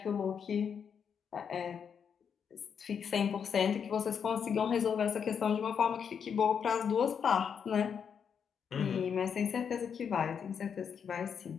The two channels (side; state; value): right; quieter; 7.1 dB